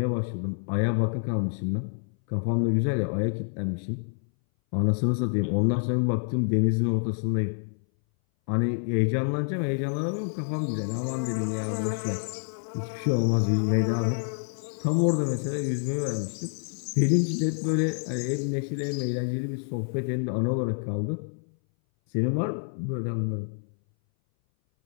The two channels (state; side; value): silent; right; 59 dB below the other